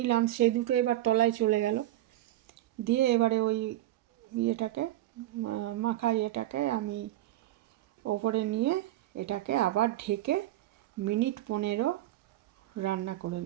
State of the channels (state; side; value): quieter; left; 14.6 dB